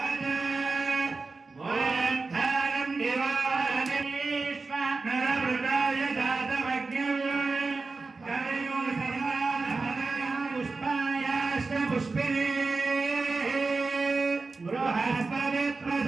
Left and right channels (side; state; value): left; quieter; 3.9 dB